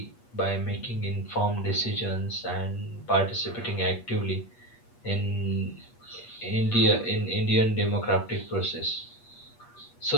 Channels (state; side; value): late; right; 8.4 ms